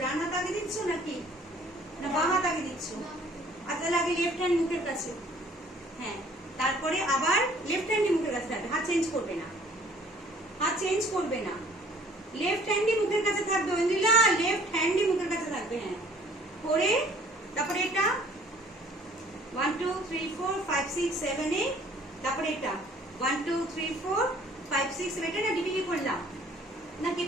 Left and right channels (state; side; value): normal; both; correlation 0.55